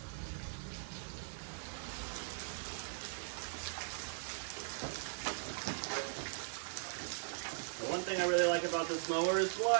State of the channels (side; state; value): left; silent; 51 dB below the other